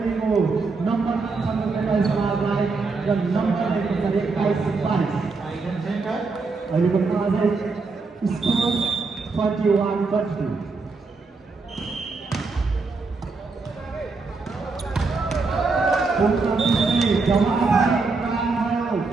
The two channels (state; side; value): quieter; left; 4.1 dB